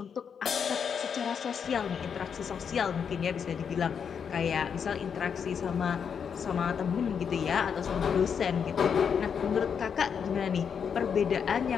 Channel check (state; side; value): quieter; right; 7.0 dB